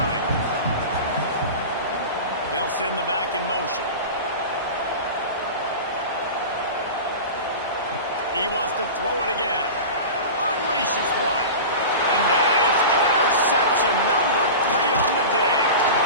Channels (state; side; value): inverted; both; correlation -0.31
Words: They'll send the back in motion. He wants to throw it again. Unleashes one. And that is interception number 3 on the day.